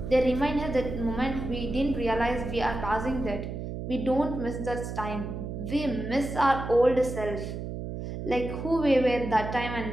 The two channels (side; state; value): right; noise; hum, 6 dB below the sound